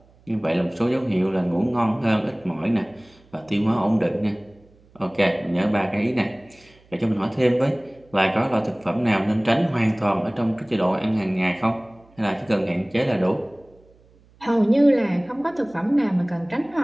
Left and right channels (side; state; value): right; noise; hum, 29 dB below the sound